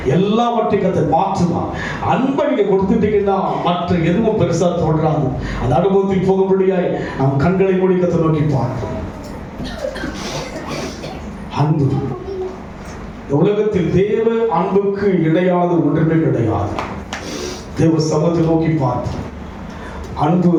எல்லாவற்றையும் கர்த்தர் மாற்றுவார். அன்பை நீங்க கொடுத்துட்டீங்கன்னா மற்ற எதுவும் பெருசா தோன்றாது. அந்த அனுபவத்தில் போகும்படியாய் நம் கண்களை மூடி கர்த்தரை நோக்கி பார்ப்போம். அன்பு உலகத்தில் தேவ அன்புக்கு இணையாத ஒன்றுமே கிடையாது. தேவ சமூகத்தை நோக்கி பார்ப்போம். அன்பு,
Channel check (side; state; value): both; identical; correlation 1.00